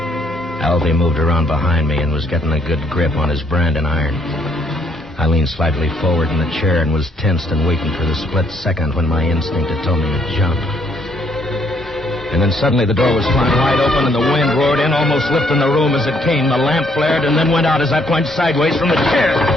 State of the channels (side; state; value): both; normal; correlation 0.69